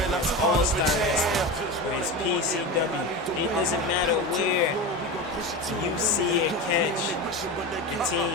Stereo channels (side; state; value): both; normal; correlation 0.23